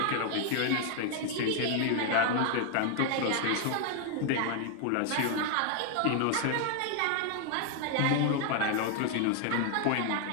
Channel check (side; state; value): both; different; correlation 0.00